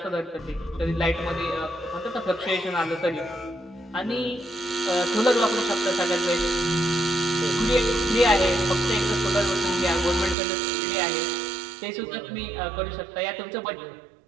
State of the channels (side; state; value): left; drops out; at 10.4 s